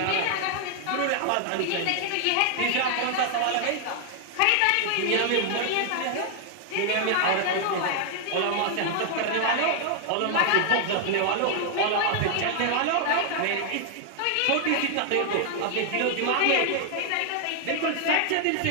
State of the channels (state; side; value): different; both; correlation 0.00